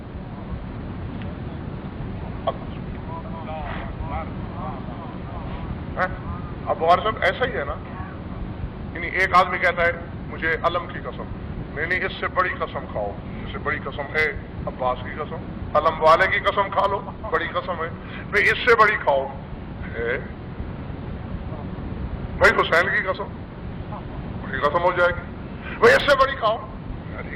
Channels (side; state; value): both; identical; correlation 1.00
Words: اب غور صاحب ایسا ہی ہے نا، یعنی ایک آدمی کہتا ہے مجھے علم کی قسم، نہیں اس سے بڑی قسم کھاؤ، اس سے بڑی قسم ہے عباس کی قسم، علم والے کی قسم کھا لو، بڑی قسم ہے بھائی، اس سے بڑی کھاؤ بھائی حسین کی قسم، بڑی قسم ہو جائے گی بھائی، اس سے بڑی کھاؤ علی